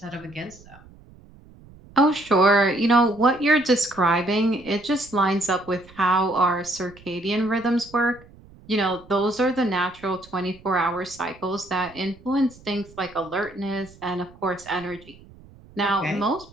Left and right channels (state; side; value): noise; right; rumble, 23 dB below the sound